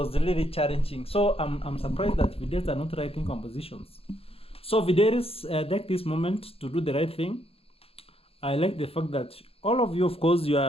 really challenging. So I'm surprised that Fidelis are not writing compositions. So Fidelis, take this moment to do the right thing. I like the fact that all of you, of course, you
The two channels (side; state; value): right; late; 0.28 ms